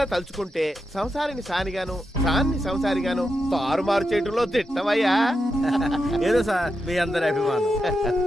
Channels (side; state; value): both; normal; correlation 0.86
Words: తలుచుకుంటే సంసారిని సానిగాను, సాన్ని సంసారిగాను తారుమారు చేయటంలో తిట్టవయ్యా. ఏదో సార్ మీ అందరి అభిమానం.